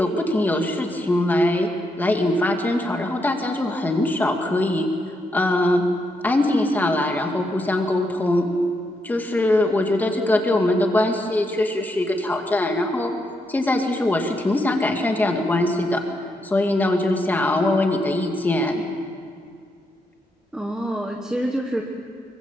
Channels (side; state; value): both; normal; correlation 0.80